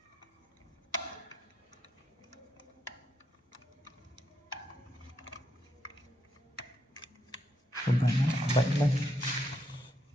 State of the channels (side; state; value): both; normal; correlation 0.79